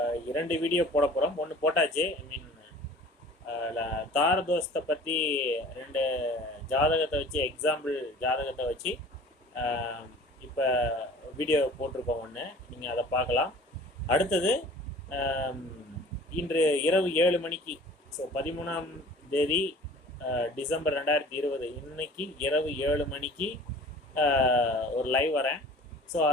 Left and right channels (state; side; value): normal; both; correlation 0.46